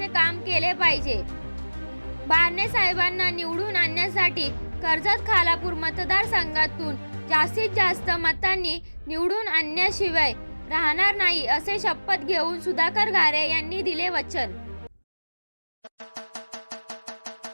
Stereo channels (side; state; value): both; inverted; correlation -1.00